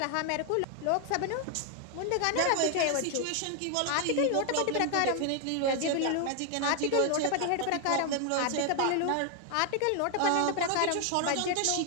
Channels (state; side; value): different; both; correlation 0.00